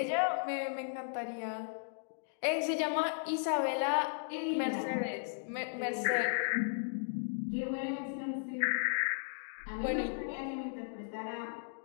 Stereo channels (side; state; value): right; silent; digital silence